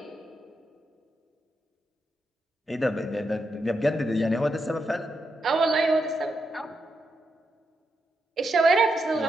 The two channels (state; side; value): normal; both; correlation 0.84